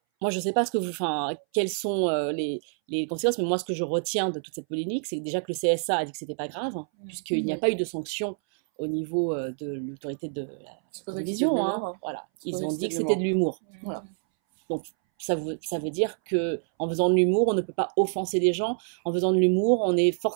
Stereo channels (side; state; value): left; silent; 60 dB below the other